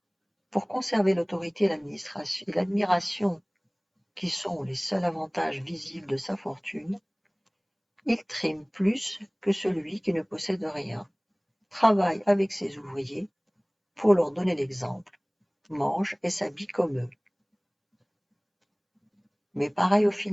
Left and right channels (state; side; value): identical; both; correlation 1.00